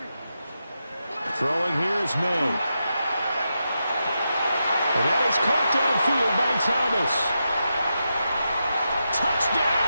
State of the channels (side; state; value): both; inverted; correlation -0.87